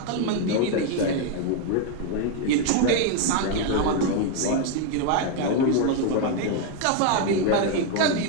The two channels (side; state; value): both; different; correlation 0.01